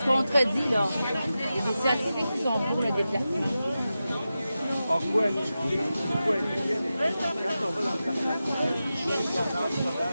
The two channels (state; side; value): inverted; both; correlation -0.92